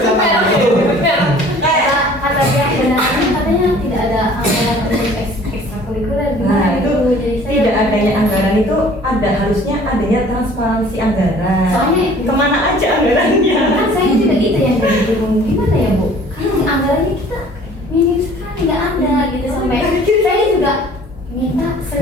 itu. kata pihak bendahara katanya tidak ada anggaran untuk ekstrakurikuler Nah gimana itu jadi saya tidak adanya anggaran itu harusnya adanya transparansi anggaran. Soalnya kemana aja anggarannya? kan saya juga itu yang jadi bingung gimana ya Bu karena anggarannya kita minim sekali nggak ada gitu sampai saya juga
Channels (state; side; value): normal; both; correlation 0.51